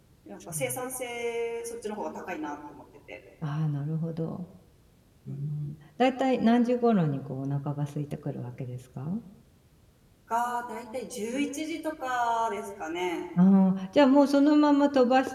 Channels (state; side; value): identical; both; correlation 1.00